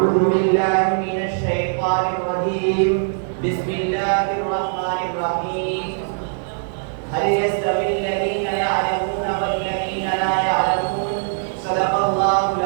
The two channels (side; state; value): left; silent; digital silence